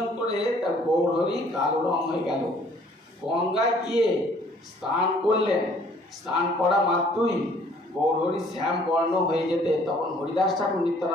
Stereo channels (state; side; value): normal; both; correlation 0.58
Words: করে তার গৌরহরি কালো রং হয়ে গেল। গঙ্গায় গিয়ে স্নান করলেন, স্নান করা মাত্রই গৌরহরি শ্যাম বর্ণ হয়ে যেতে, তখন হরিদাস ঠাকুর